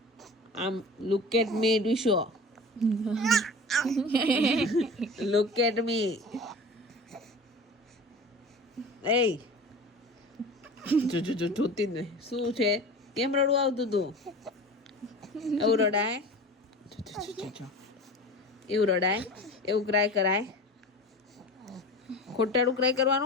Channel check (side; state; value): both; normal; correlation 0.36